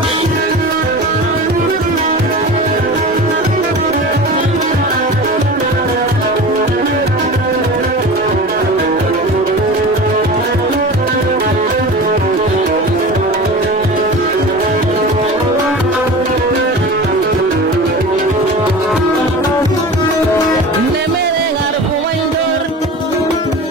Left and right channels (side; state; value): both; normal; correlation 0.34